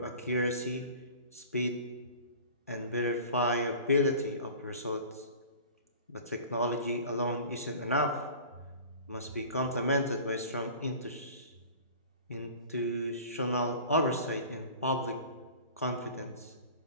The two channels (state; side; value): inverted; both; correlation -0.42